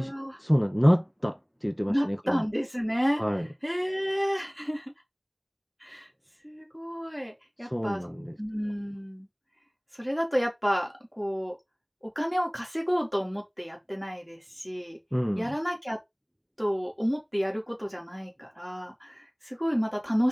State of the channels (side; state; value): both; identical; correlation 1.00